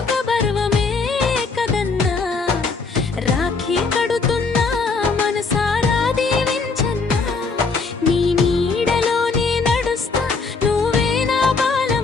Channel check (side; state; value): right; quieter; 4.4 dB